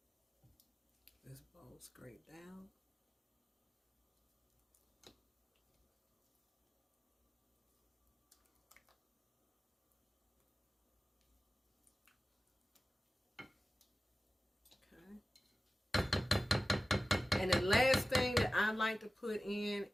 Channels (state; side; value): normal; both; correlation 0.95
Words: This bowl scrape down. And the last thing that I like to put in